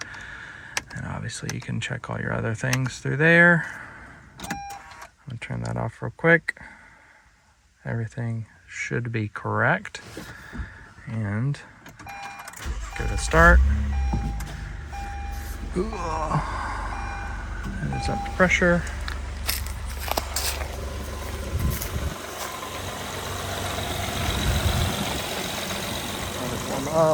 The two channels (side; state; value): both; identical; correlation 1.00